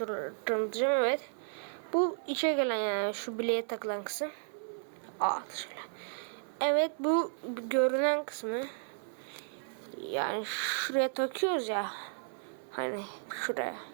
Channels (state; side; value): silent; left; 55 dB below the other